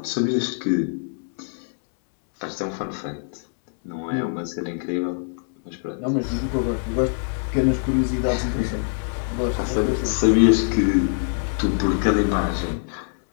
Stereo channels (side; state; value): right; silent; 63 dB below the other